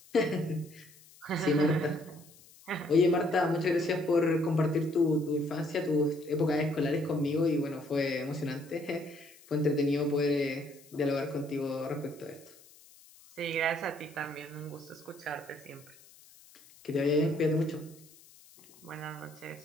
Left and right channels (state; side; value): noise; left; hiss, 24 dB below the sound